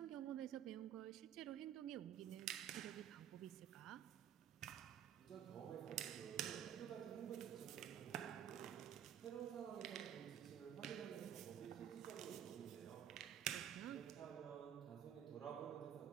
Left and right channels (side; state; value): left; quieter; 10.0 dB